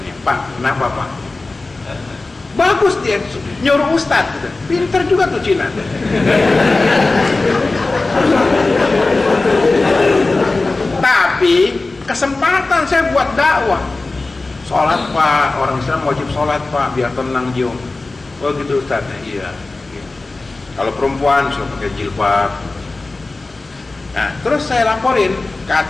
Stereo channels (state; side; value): quieter; right; 3.3 dB